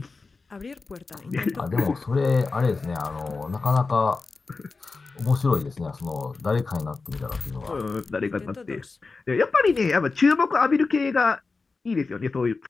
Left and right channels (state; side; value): quieter; right; 4.1 dB